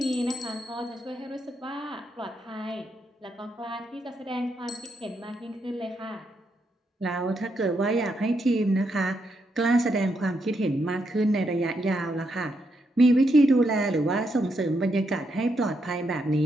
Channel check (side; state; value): both; normal; correlation 0.80